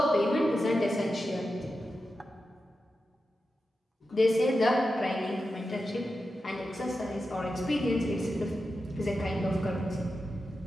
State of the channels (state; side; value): normal; both; correlation 0.91